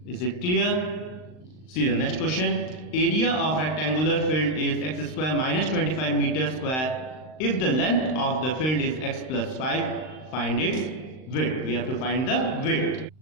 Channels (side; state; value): right; late; 39 ms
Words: Is it clear? See the next question. Area of rectangular field is x square minus 25 meters square. If the length of the field is x plus 5, find its width. We have to find the width.